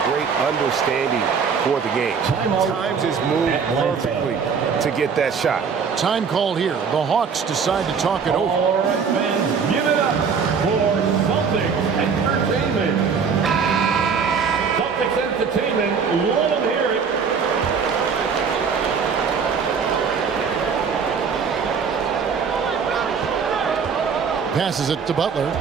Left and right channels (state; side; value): quieter; left; 6.0 dB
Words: great understanding for the game. Times his move perfectly to get that shot. Time called here. The Hawks decide to talk it over. All right, fans, give it up for Celtics Entertainment. Celtics Entertainment, let them hear it. Passes it to Butler.